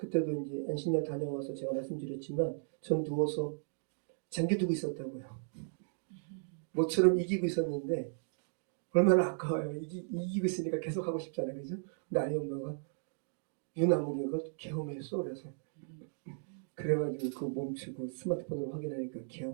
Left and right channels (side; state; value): left; silent; digital silence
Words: 이제 안식년 다녀와서 제가 말씀드렸지만, 전 누워서 잠겨두고 있었다고요. 모처럼 이기고 있었는데, 얼마나 아까워요. 이기고 있으니까 계속 하고 싶잖아요, 그죠? 근데 아이 엄마가 유나무리가 계엄했어, 그래서. 그래가지고 그거 멈추고 스마트폰으로 확인하니까